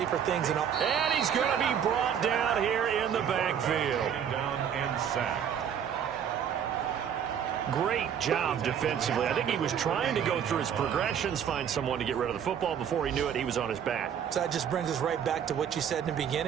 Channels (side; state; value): left; quieter; 8.5 dB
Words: things in all. And he's going to be brought down here in the backfield. Down and sacked. Great job defensively. I think he was trying to go through his progressions, find someone to get rid of the football. Before he knew it, he was on his back. So that just brings us right back to what you said in the